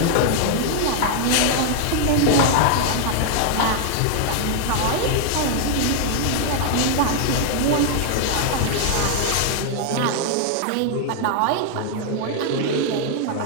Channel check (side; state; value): both; different; correlation 0.00